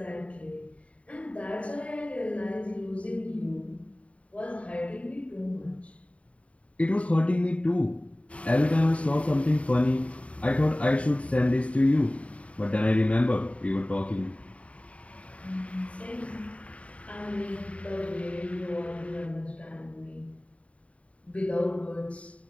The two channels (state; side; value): late; right; 0.065 ms